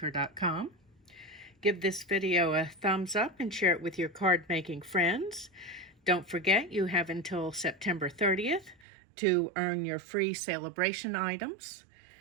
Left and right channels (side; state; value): left; drops out; at 8.8 s